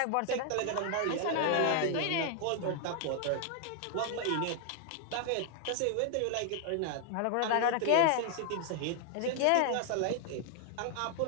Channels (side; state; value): both; different; correlation 0.00